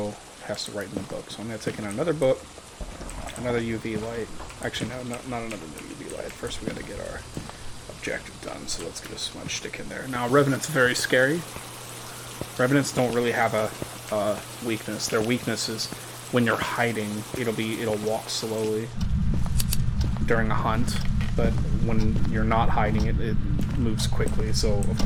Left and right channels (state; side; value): identical; both; correlation 1.00